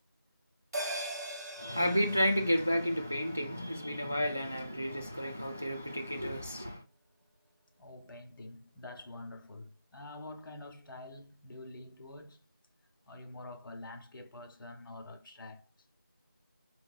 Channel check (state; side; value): inverted; both; correlation -0.86